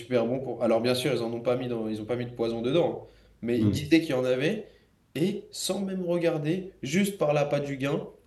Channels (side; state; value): both; identical; correlation 1.00